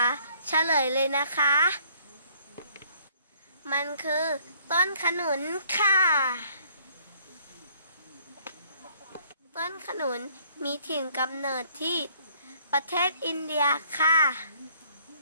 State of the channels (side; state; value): both; inverted; correlation -0.62